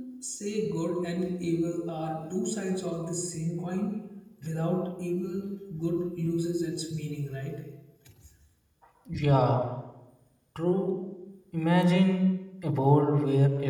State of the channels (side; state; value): both; identical; correlation 1.00